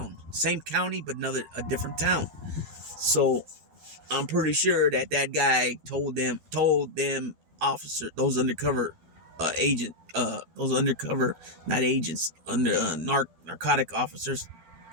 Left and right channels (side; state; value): left; late; 12 ms